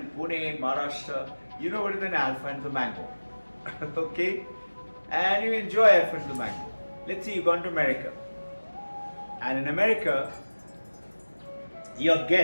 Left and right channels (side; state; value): both; inverted; correlation -1.00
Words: Pune, Maharashtra, you know what is an Alfonso mango. Okay? And you enjoy Alfonso mango. Let's say you've gone to America. And in America, your